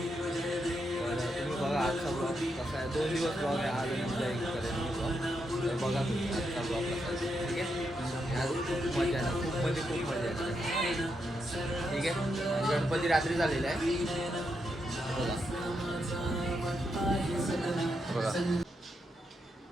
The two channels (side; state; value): both; normal; correlation 0.82